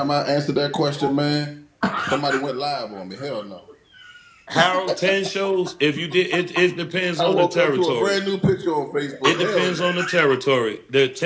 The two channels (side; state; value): both; identical; correlation 1.00